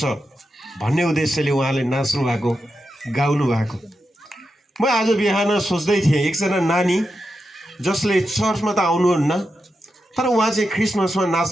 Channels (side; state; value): both; normal; correlation 0.88